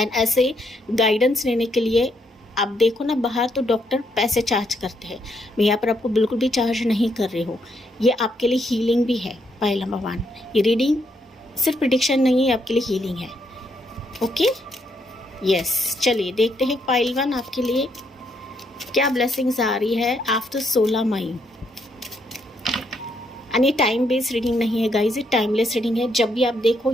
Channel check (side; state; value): both; normal; correlation 0.75